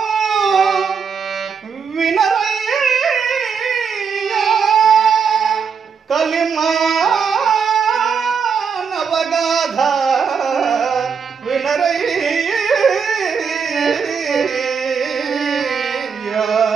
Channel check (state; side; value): quieter; left; 6.2 dB